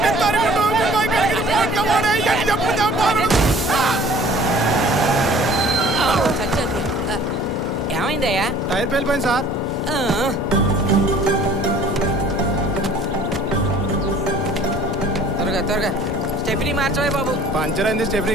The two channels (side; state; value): both; normal; correlation 0.50